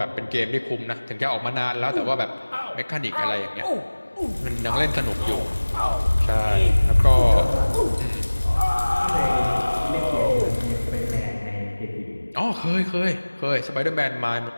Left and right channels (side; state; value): both; inverted; correlation -1.00